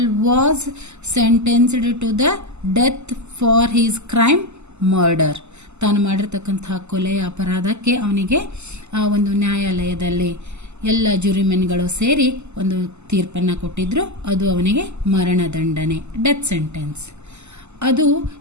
was sentenced to the death for his crime murder. ತಾನು ಮಾಡಿರ್ತಕ್ಕಂತಹ ಕೊಲೆಯ ಅಪರಾಧಕ್ಕೆ ಅವನಿಗೆ ಆ ಒಂದು ನ್ಯಾಯಾಲಯದಲ್ಲಿ ಎಲ್ಲ ಜುರಿಮೆನ್ಗಳು ಸೇರಿ ಒಂದು ತೀರ್ಪನ್ನು ಕೊಟ್ಟಿದ್ರು. ಅದು ಅವನಿಗೆ ಮರಣದಂಡನೆ, ಡೆತ್ ಸೆಂಟೆನ್ಸ್. ಅದು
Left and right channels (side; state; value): left; late; 0.82 ms